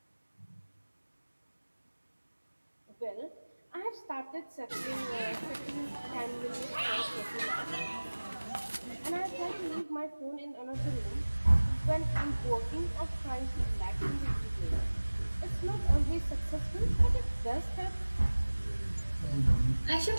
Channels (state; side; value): inverted; both; correlation -1.00